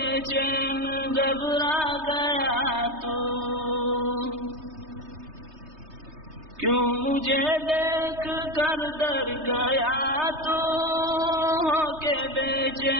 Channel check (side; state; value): left; late; 3.2 ms